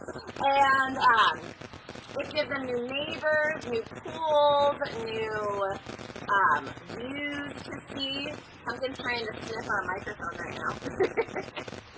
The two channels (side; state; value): both; identical; correlation 1.00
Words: And it gives them new neighbors, new pools, new views to see. Punkin's trying to sniff our microphone right now.